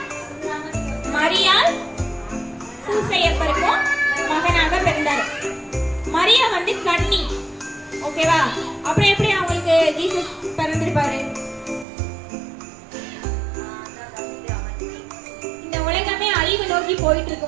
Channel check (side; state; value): left; drops out; at 11.9 s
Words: மரியாள் சூசையப்பருக்கும் மகனாக பிறந்தாரு. மரியா வந்து கன்னி. ஓகேவா? அப்புறம் எப்படி அவங்களுக்கு ஜீசஸ் பிறந்திருப்பாரு? இந்த உலகமே அழிவு நோக்கி போயிட்டு